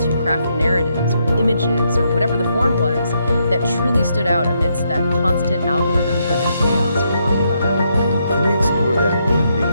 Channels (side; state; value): both; inverted; correlation -0.78